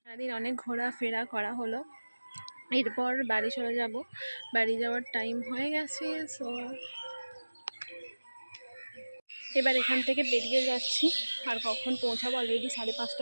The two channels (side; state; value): both; inverted; correlation -1.00